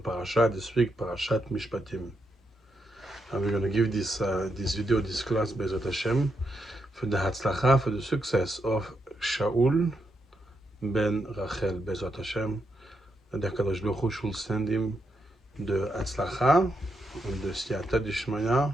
This week, PARASHAT MISHPATIM. And we're going to give this video, this class, Bezrat Hashem, for the Hatzlacha, for the success of Shaul ben Rachel, Bezrat Hashem. That the HaKadosh Baruch Hu should send him the Hatzlacha and the Siyata Dishmaya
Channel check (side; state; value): both; normal; correlation 0.82